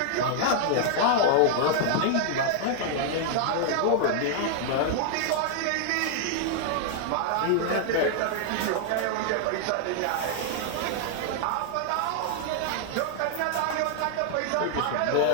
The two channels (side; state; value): both; different; correlation 0.00